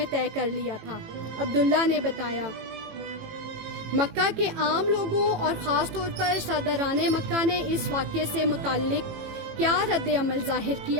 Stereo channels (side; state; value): left; late; 18 ms